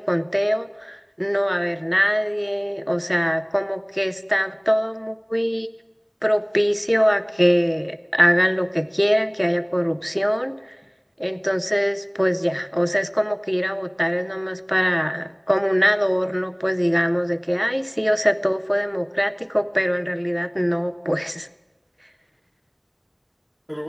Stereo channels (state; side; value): identical; both; correlation 1.00